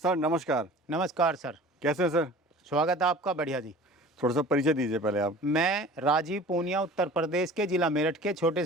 नमस्कार। नमस्कार सर। कैसे हैं सर? स्वागत है आपका। बढ़िया जी। थोड़ा सा परिचय दीजिए पहले आप। मैं राजीव पूनिया, उत्तर प्रदेश के जिला मेरठ के छोटे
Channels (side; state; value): both; normal; correlation 0.43